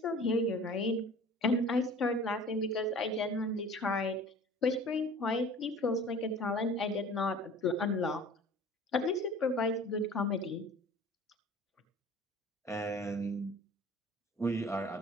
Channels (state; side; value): normal; both; correlation 0.45